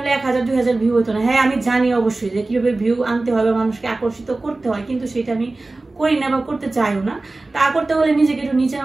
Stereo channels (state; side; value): quieter; left; 3.2 dB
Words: 1000-2000 ভিউ হতো না। হ্যাঁ, আমি জানি অবশ্যই যে কিভাবে ভিউ আনতে হবে, মানুষকে আকর্ষিত করতে হয়, কিন্তু সেটা আমি করি না বা করতে চাইও না। তা করতে হলে নিজেকে একটু নিচে